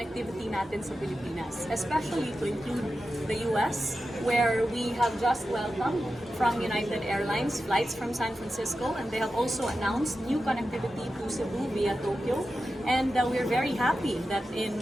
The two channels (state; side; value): normal; both; correlation 0.92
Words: natin sa Pilipinas, especially to include the US, where we have just welcomed from United Airlines flights from San Francisco, and they have also announced new connectivity to Cebu via Tokyo. And we're very happy that